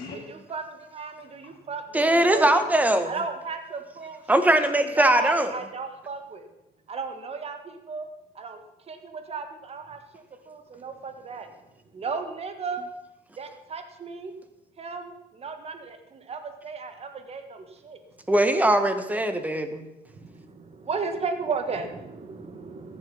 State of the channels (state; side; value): normal; both; correlation 0.69